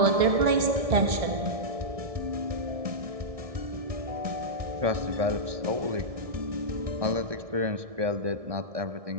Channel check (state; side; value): late; left; 1.6 ms